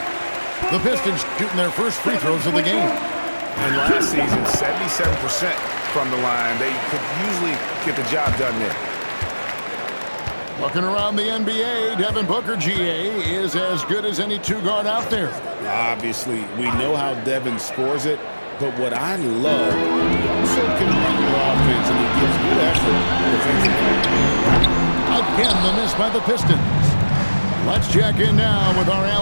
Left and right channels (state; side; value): inverted; both; correlation -1.00